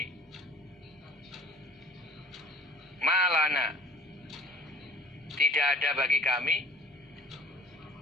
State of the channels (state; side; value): normal; both; correlation 0.48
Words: Malana, tidak ada bagi kami